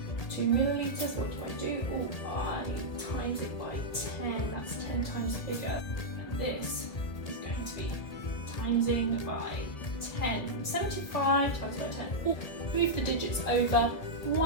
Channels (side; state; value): right; late; 1.9 ms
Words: to millilitres, what do I do? Oh, I times it by 10, that's 10 times bigger. And this is going to be timesing by 10. 75 times by 10. Oh, move the digits over,